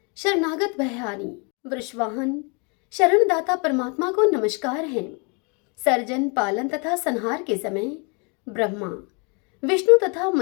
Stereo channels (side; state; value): right; quieter; 33.7 dB